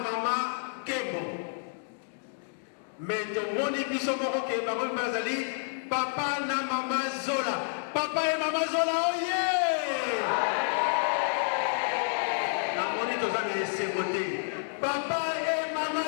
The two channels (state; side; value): silent; right; digital silence